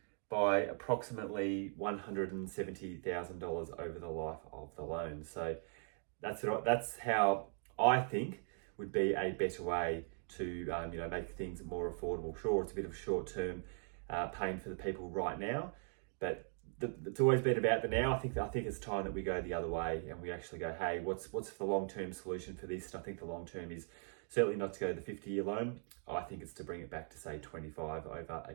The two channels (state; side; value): silent; left; 51 dB below the other